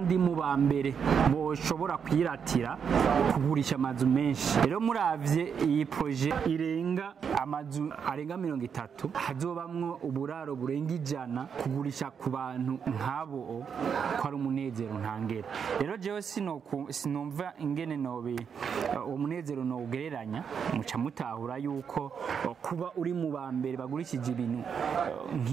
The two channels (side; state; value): left; quieter; 6.9 dB